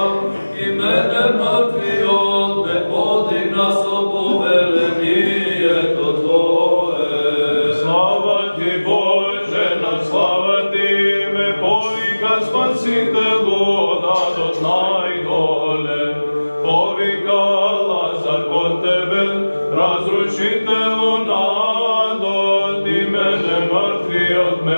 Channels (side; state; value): both; inverted; correlation -1.00